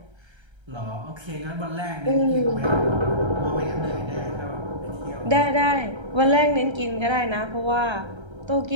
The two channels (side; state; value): left; late; 1.3 ms